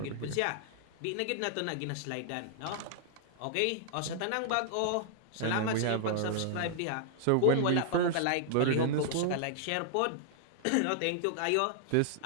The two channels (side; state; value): both; different; correlation -0.01